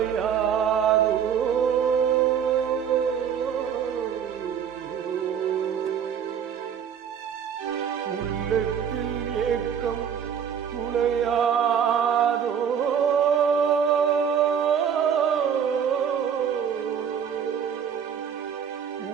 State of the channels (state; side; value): quieter; left; 7.9 dB